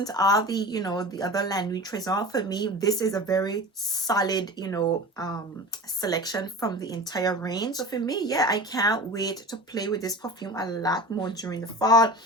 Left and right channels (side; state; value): both; normal; correlation 0.34